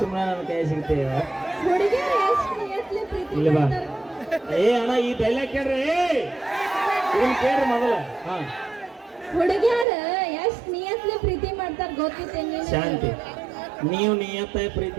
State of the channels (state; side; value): drops out; left; at 9.9 s